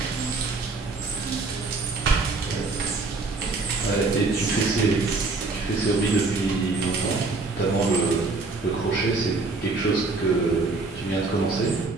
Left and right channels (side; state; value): left; quieter; 3.7 dB